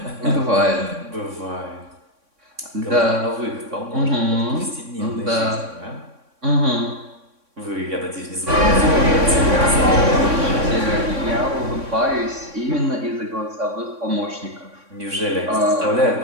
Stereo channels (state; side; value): late; left; 3.6 ms